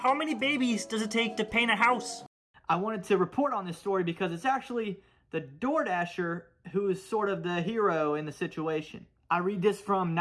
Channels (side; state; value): both; identical; correlation 1.00